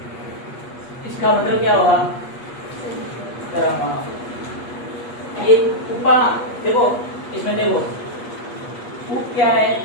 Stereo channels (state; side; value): late; right; 8.4 ms